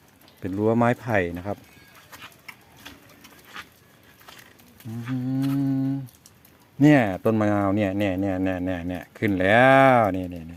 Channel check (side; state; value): both; identical; correlation 1.00